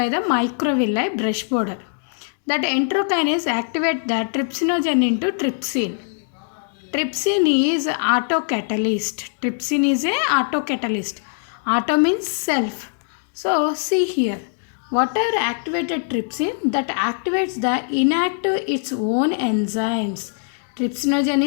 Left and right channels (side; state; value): right; silent; digital silence